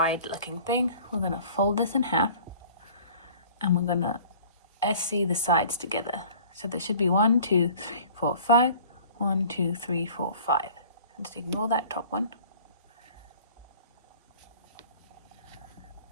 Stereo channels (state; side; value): inverted; both; correlation -0.48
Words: looking thing. We're going to fold this in half and we're going to SC the sides together. So there should be 1, 2, 3, 4, 5, 1, 2, 3, 4, 5. Just ignore that top one.